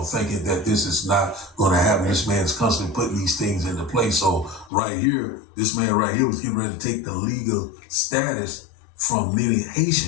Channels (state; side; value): drops out; right; at 4.7 s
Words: thinking that this is not going to happen. This man's constantly putting these things into place. So right here, this man right here was getting ready to take the legal status from many